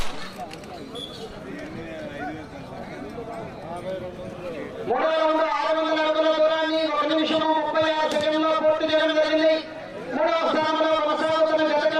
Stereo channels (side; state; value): both; identical; correlation 1.00